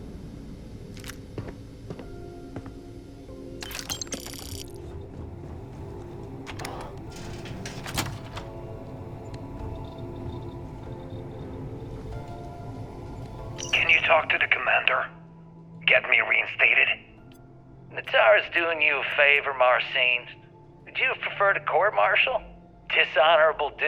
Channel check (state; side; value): identical; both; correlation 1.00